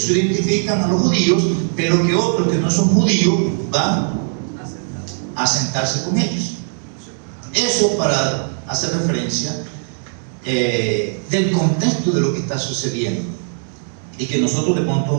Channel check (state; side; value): silent; left; 67 dB below the other